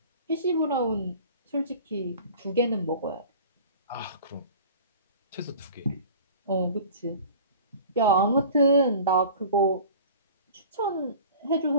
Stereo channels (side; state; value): both; inverted; correlation -0.43